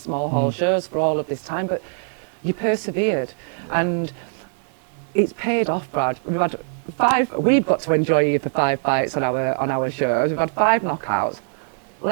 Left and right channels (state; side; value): silent; left; digital silence